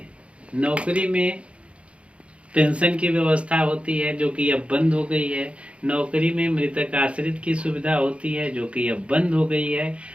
नौकरी में पेंशन की व्यवस्था होती है जो कि अब बंद हो गई है। नौकरी में मृतक आश्रित की सुविधा होती है जो कि अब बंद हो गई है।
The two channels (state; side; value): late; left; 0.061 ms